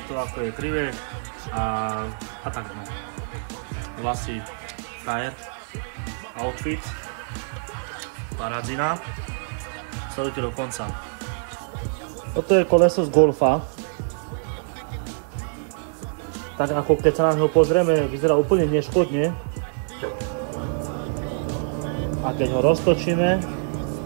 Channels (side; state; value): left; silent; digital silence